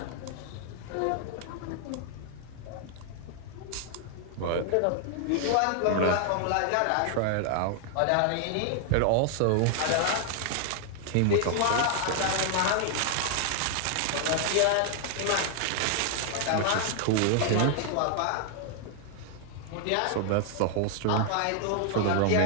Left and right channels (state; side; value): different; both; correlation 0.00